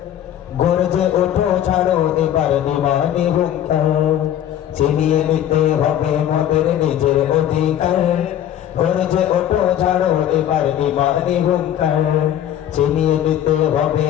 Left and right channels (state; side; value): quieter; right; 11.0 dB